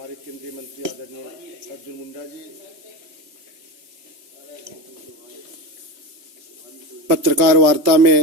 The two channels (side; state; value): left; late; 2.9 ms